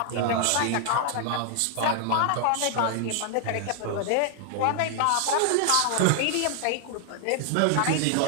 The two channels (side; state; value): both; different; correlation -0.01